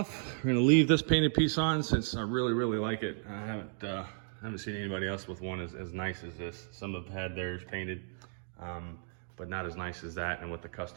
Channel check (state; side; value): silent; left; 55 dB below the other